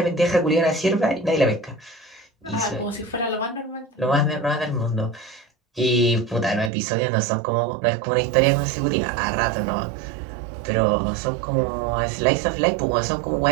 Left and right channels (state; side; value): drops out; left; at 6.7 s